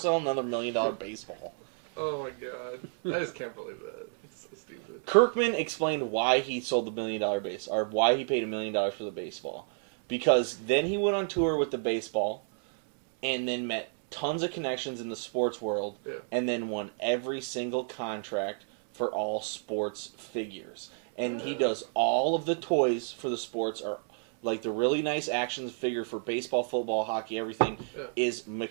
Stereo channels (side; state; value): left; silent; 58 dB below the other